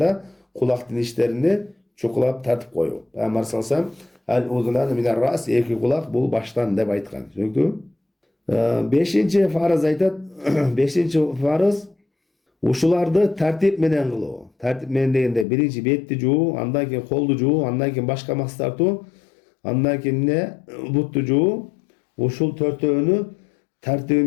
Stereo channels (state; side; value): drops out; right; at 15.5 s